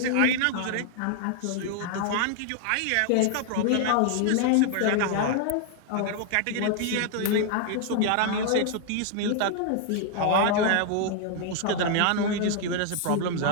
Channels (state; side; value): different; both; correlation 0.00